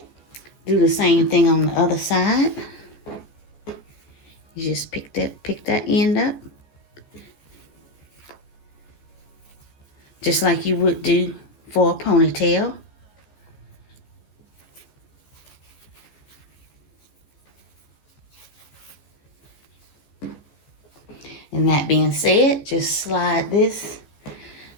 Do the same thing on the other side. You just pick that end up. Just like you would do for a ponytail. And that being said, just slide this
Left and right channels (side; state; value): right; late; 14 ms